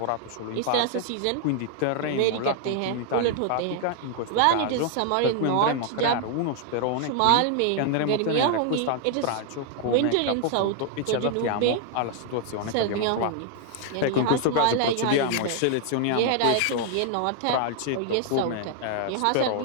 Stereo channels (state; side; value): different; both; correlation 0.00